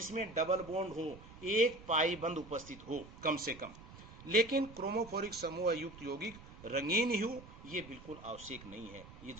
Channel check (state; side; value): noise; right; rumble, 17 dB below the sound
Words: डबल बॉन्ड हो, एक पाई बंद उपस्थित हो कम से कम। लेकिन क्रोमोफोरिक समूह युक्त यौगिक रंगीन ही हो, ये बिल्कुल आवश्यक नहीं है, ये